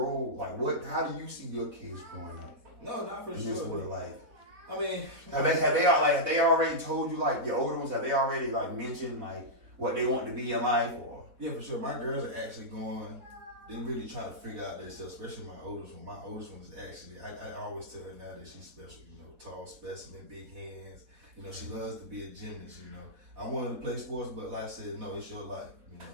like, how do you see your kids growing up? No, not for in sure. This world, like, I mean, have they already told you, like, your older ones, have they already, like, mentioned, like, what they want to be in life, or? Yeah, for sure. My girls are actually going. They really trying to figure out themselves, especially my oldest one. My oldest one is actually, I always tell her now that she's special, you know, tall specimen, big hands, You know, she loves to be a gymnast, you know. I wanted to play sports, but like I said, no, it's your life, you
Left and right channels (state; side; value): late; left; 4.1 ms